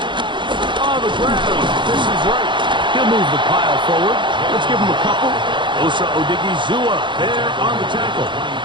Move the pile forward. Let's give him a couple. Osa Odigizua there on the tackle.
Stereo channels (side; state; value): left; late; 0.23 ms